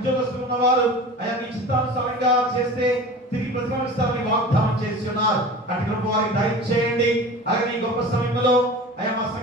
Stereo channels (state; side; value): normal; both; correlation 0.37